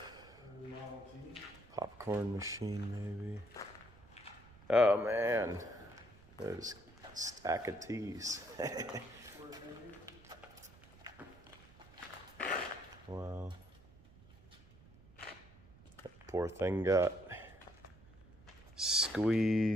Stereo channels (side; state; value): right; noise; rumble, 23 dB below the sound